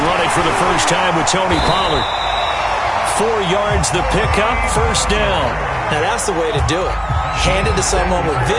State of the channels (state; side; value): identical; both; correlation 1.00